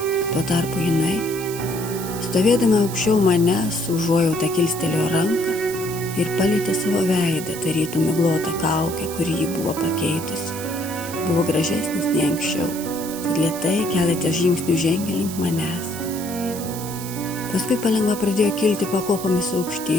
Tuo tarpu jinai, stovėdama aukščiau manęs, užuojautą kilstelėjo ranką ir palietė savo veidą, tarytum miglotą kaukę, kurį ji buvo pakeitusi. Buvo gražesnis nei anksčiau, tad lėtai keletą žingsnių žengė link manęs. Paskui palengva pradėjo kilti pakopomis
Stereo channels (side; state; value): right; noise; hiss, 11 dB below the sound